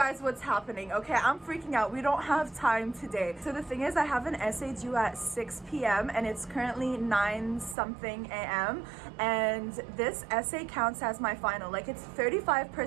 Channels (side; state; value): left; drops out; at 7.8 s